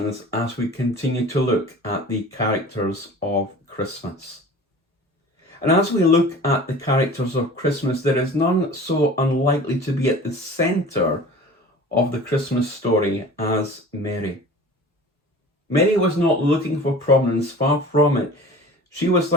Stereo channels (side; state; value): both; normal; correlation 0.41